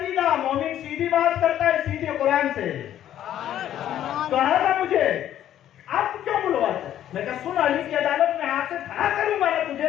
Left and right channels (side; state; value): right; quieter; 11.5 dB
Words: مومن سیدھی بات کرتا ہے، سیدھے قرآن سے. کہا تھا مجھے آپ کیوں بلواتے؟ میں کہا سن، علی کی عدالت میں ہاتھ سے کھڑا کروں گا نا